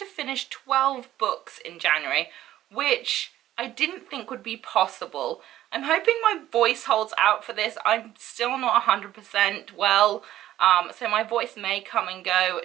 finish 12 books in January, which I didn't think would be possible. I'm hoping my voice holds out for this. I'm still not 100% well. So my voice may come and go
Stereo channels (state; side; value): quieter; left; 13.4 dB